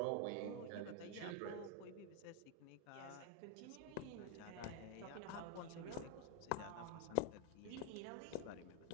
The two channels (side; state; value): both; different; correlation 0.01